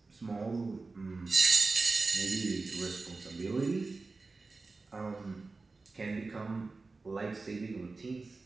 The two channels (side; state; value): left; quieter; 3.8 dB